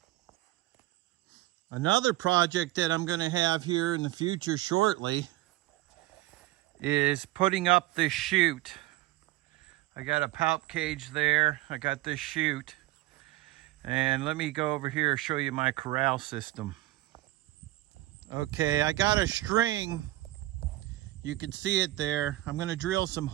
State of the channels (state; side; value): quieter; left; 17.4 dB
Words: Another project that I'm going to have here in the future shortly is putting up this chute. I got a palp cage there. I got this chute. And let me go over here and show you my corral system. Okay, I got a string. You can see it there. I'm going to drill some